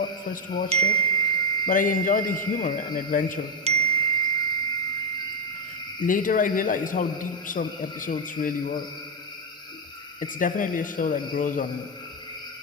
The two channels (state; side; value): normal; both; correlation 0.05